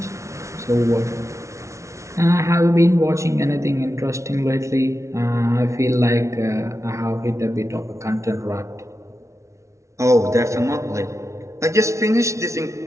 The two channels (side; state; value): left; late; 0.14 ms